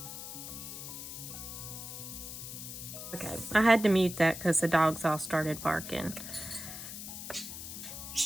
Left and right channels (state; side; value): noise; left; hiss, 9 dB below the sound